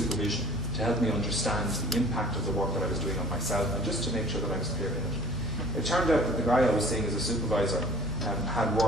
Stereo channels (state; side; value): normal; both; correlation 0.48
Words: to help me understand the impact of the work that I was doing on myself, and just to make sure that I was clear in it. It turned out that the guy I was seeing as a supervisor had